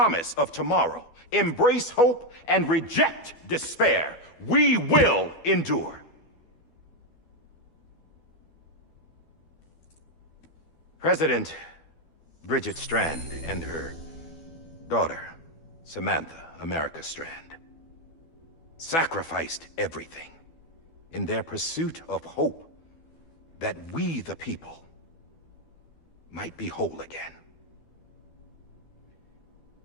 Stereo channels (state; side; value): late; right; 12 ms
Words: of tomorrow, embrace hope, and reject despair, we will endure. President Bridget Strand and her daughter, Samantha America Strand, sacrificed everything in their pursuit of hope that we, the people, might be whole again.